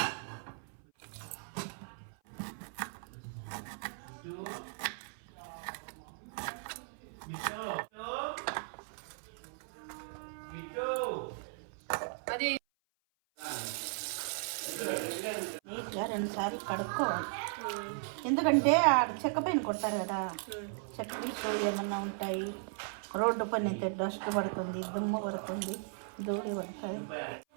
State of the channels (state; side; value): silent; left; 53 dB below the other